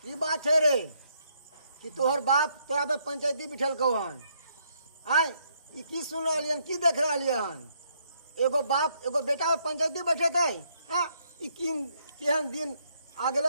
की बात है रे कि तोहर बाप तोरा पे पंचायती बिठल कौ हन आय ई की सुन रहा की देख रहा हन एगो बाप एगो बेटा पे पंचायती बैठे थे हाँ ई केहन दिन आ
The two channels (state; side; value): inverted; both; correlation -0.72